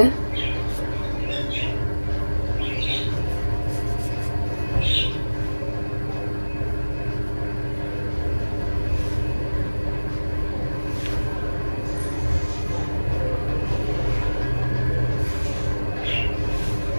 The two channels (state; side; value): inverted; both; correlation -1.00